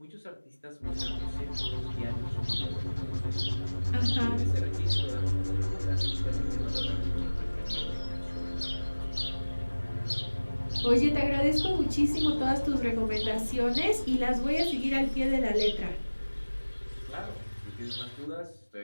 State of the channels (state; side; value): inverted; both; correlation -1.00